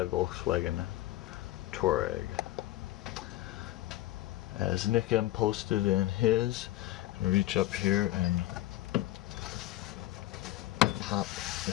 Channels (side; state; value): right; quieter; 15.9 dB